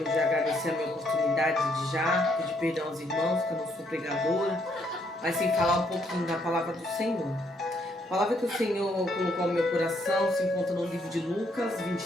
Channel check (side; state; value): both; normal; correlation 0.71